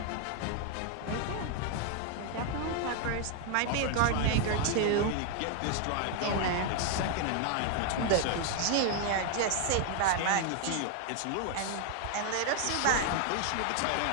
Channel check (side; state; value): both; different; correlation 0.00